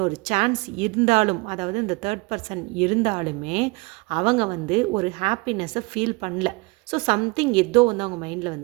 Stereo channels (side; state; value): left; quieter; 27.2 dB